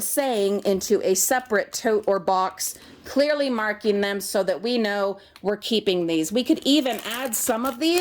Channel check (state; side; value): identical; both; correlation 1.00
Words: saying, into a separate tote or box, clearly marking them so that we know we're keeping these. We could even add some of